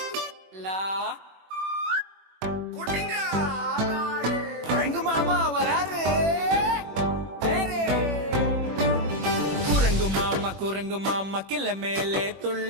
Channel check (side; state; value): left; late; 21 ms